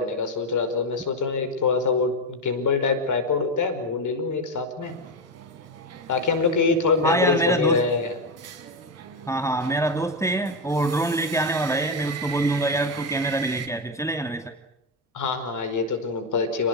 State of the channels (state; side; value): normal; both; correlation 0.10